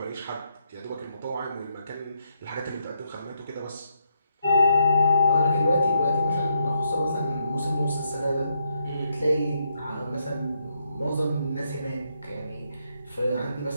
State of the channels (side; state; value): both; inverted; correlation -0.77